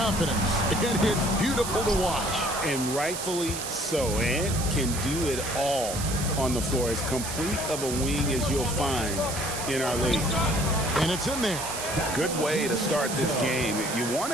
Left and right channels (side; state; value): right; noise; hiss, 6 dB below the sound